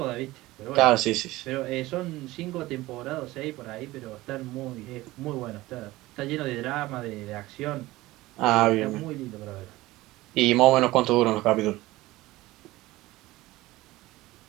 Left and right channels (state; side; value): quieter; left; 18.4 dB